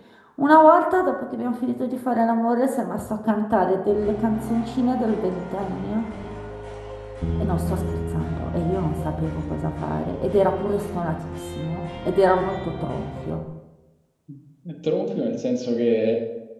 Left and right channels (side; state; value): both; identical; correlation 1.00